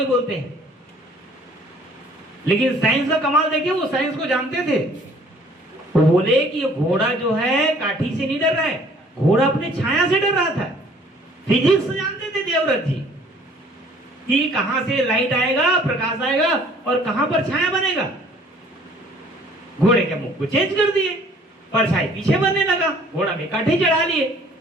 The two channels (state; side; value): normal; both; correlation 0.56